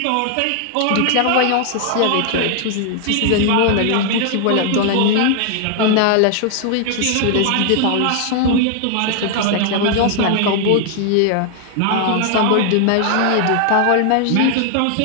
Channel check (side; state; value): both; different; correlation 0.00